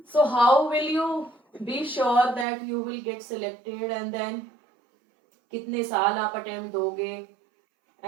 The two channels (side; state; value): left; drops out; at 2.5 s